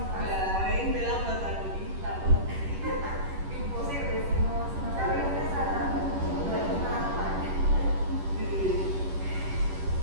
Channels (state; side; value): late; left; 10 ms